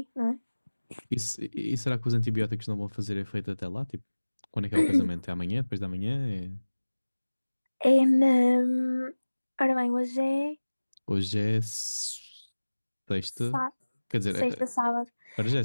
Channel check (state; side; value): inverted; both; correlation -1.00